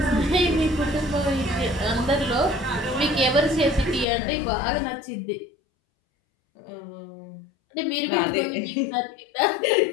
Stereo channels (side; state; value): right; drops out; at 4.0 s